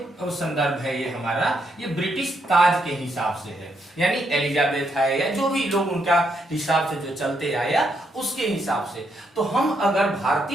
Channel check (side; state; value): both; normal; correlation 0.77